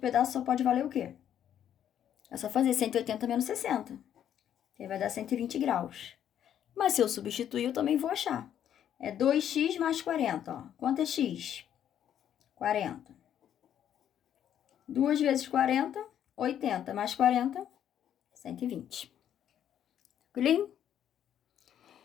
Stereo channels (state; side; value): quieter; right; 10.0 dB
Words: pedaço só pode valer o quê? É só fazer 180 menos 60. Aí vai dar 120 graus. Mas se eu substituir, eu também vou achar. É 2x mais 40, ó. Quanto é x? 40. 2 vezes 40, 80 mais 40, 120. Tranquilinho?